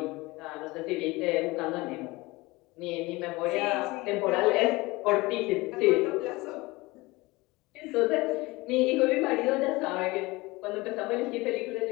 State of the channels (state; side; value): quieter; right; 22.2 dB